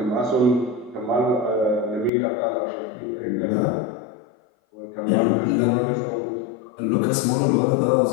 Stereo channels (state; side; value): drops out; right; at 2.1 s